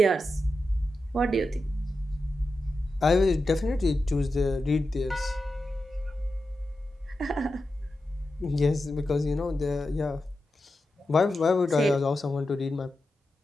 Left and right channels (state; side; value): normal; both; correlation 0.90